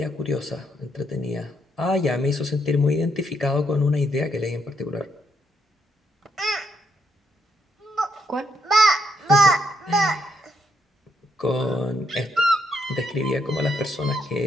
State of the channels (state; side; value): normal; both; correlation 0.75